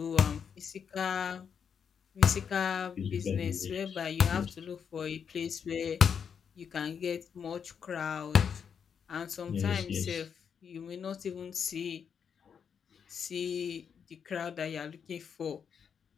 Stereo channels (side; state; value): right; quieter; 7.1 dB